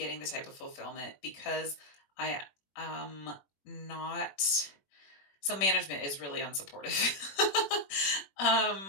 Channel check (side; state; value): right; late; 21 ms